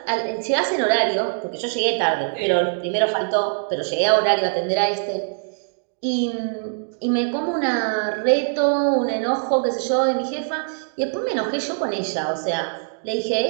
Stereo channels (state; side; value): silent; left; digital silence